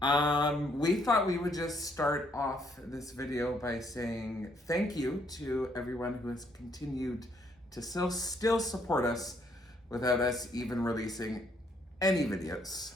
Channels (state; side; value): normal; both; correlation 0.70